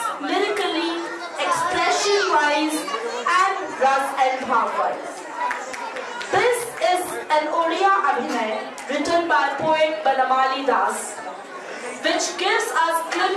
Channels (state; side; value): identical; both; correlation 1.00